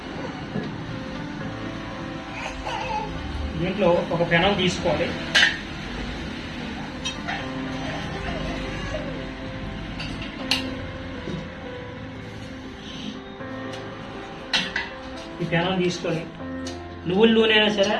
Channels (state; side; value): identical; both; correlation 1.00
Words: దీంట్లో ఒక పెనం తీసుకోవాలి. ఈ పెనం తీసుకొని నువ్వుల నూనె అయినా సరే,